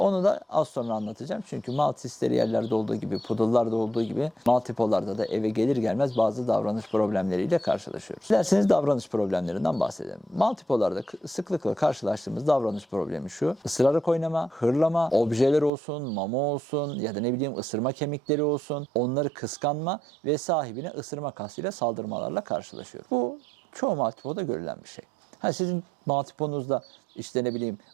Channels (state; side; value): drops out; left; at 15.7 s